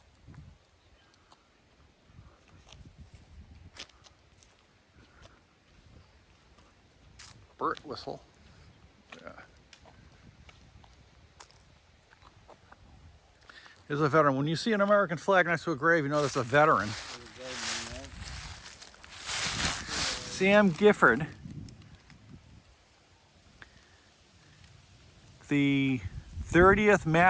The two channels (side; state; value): both; identical; correlation 1.00